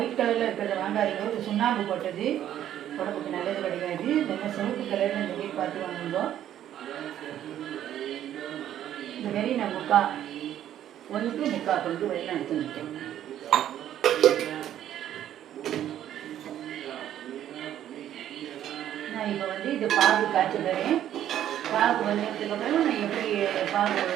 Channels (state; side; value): quieter; left; 11.3 dB